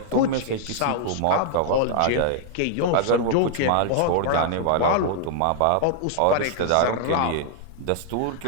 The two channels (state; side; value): different; both; correlation -0.01